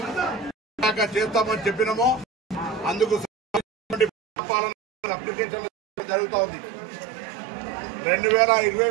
చేస్తామని చెప్పినామో అందుకు అప్లికేషన్ జరుగుతూ ఉంది.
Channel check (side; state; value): left; drops out; at 4.1 s